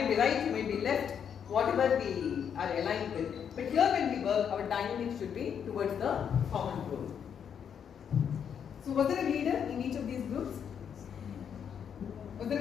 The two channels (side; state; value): right; quieter; 7.9 dB